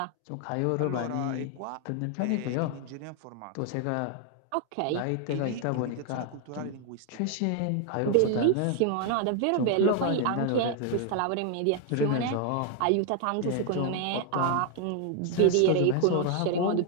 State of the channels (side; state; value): both; different; correlation 0.00